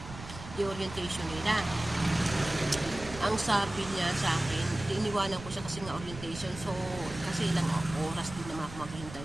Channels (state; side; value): noise; right; rumble, 13 dB below the sound